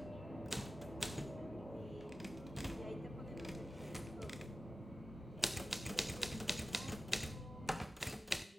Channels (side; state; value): both; normal; correlation 0.93